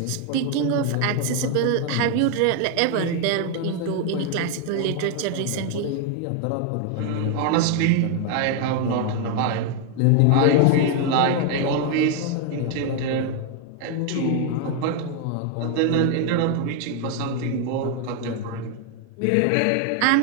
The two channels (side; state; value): both; different; correlation 0.00